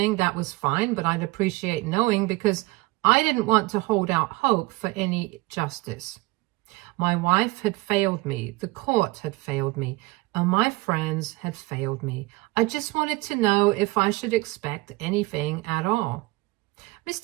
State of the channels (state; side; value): quieter; left; 22.5 dB